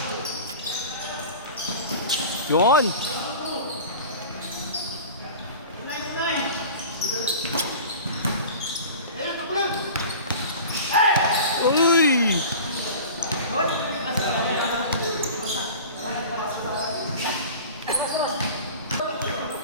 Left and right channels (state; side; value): inverted; both; correlation -0.38